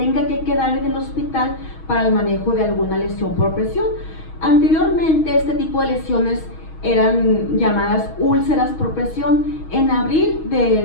que quedar en el hospital para el manejo de alguna lesión por presión. Anteriormente este tipo de lesiones eran llamadas úlceras por presión. En abril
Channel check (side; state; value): right; late; 6.3 ms